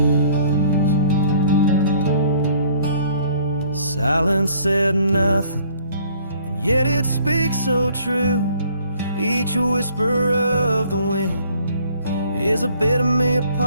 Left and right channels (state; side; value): inverted; both; correlation -0.59